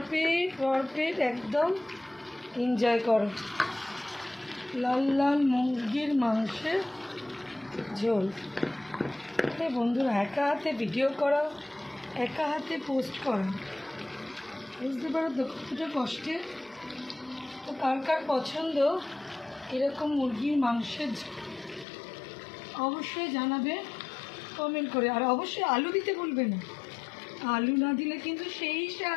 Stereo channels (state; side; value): drops out; right; at 21.9 s